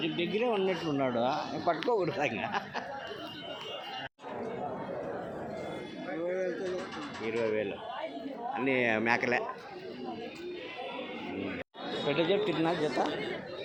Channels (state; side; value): identical; both; correlation 1.00